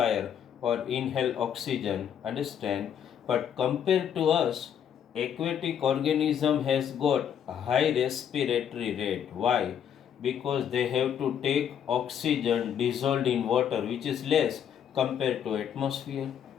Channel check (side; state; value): right; quieter; 8.8 dB